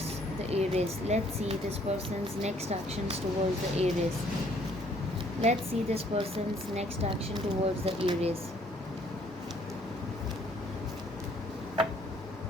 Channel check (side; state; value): both; normal; correlation 0.63